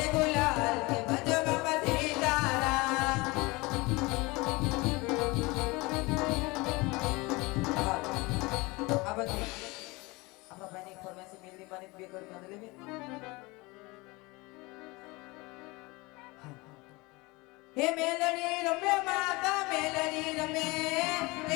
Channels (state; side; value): quieter; right; 24.0 dB